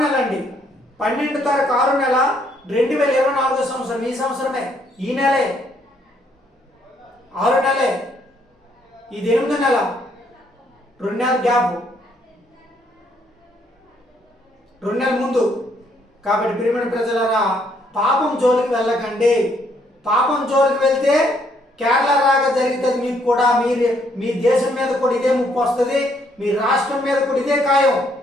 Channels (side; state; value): both; normal; correlation 0.69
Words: నెల అండి. 12వ తారీఖు 6వ నెల 2024 సంవత్సరం. ఈ సంవత్సరమే, ఈ నెలే, 6వ నెలే. ఇది 8వ నెల, 2 నెలల గ్యాప్, 2 నెలల ముందు. కాబట్టి ప్రియమైన ప్రజలారా, పాపం జోలికి వెళ్ళకండి. పాపం జోలికి వెళ్తే కేరళ రాగా జరుగుతుంది మీకు కూడా. మీ దేశం మీద కూడా ఇదే ముప్పు వస్తుంది, మీ రాష్ట్రం మీద కూడా ఇదే ఖాయం.